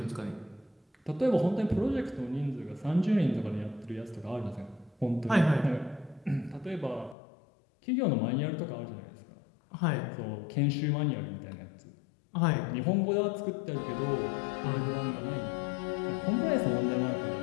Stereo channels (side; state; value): right; drops out; at 7.2 s